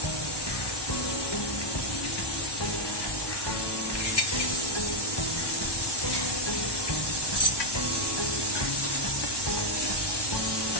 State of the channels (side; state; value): right; late; 1.2 ms